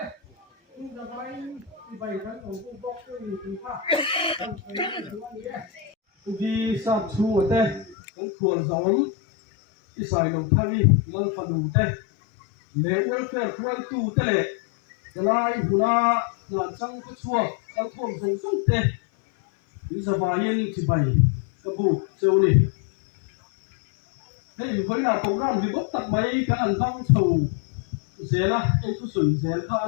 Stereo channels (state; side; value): drops out; right; at 8.0 s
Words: nhưng mà vậy thì vậy cái nó cũng gốc tiêu thì khác đi sát chu ở đây cũng thuần giống đi xài đồng thang đi lần phần đồng đây lễ ôi phê khuôn tu thế lệ cái lai hula là trăng cái chua cái thuần giống giống tê đi ra vài yên chỉ bày cái bù châu này thế với là côngran thì bốc tập mấy cái ăn thong thầu dễ là cái tu sủng dễ là